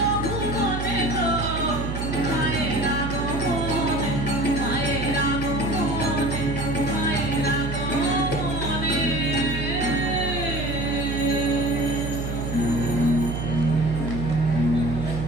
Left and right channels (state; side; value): noise; right; hum, 4 dB below the sound